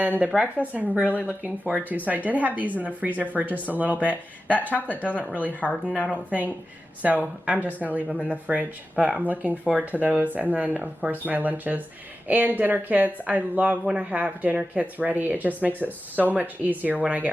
the breakfast I'm really looking forward to. So I did have these in the freezer for just a little bit. That chocolate doesn't really harden, I don't think. So I'm just gonna leave them in the fridge. But I'm looking forward to those. And then of course my lunches and dinner kits. I love when I have dinner kits ready. It just makes it so much easier when I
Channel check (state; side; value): normal; both; correlation 0.93